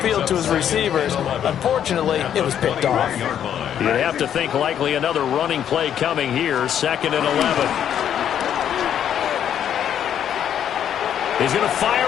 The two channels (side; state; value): right; quieter; 9.6 dB